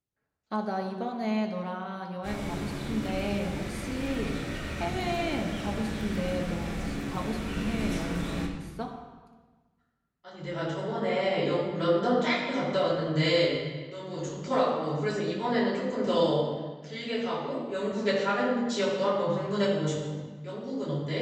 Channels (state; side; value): identical; both; correlation 1.00